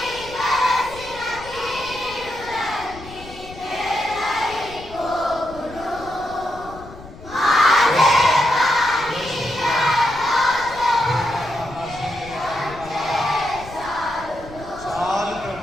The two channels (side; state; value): left; noise; rumble, 17 dB below the sound